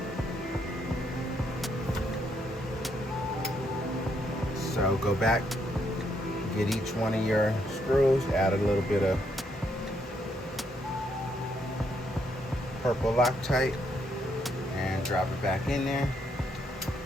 So go back Get each one of your screws, add a little bit of purple Loctite, and drop it back in there.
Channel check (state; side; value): normal; both; correlation 0.74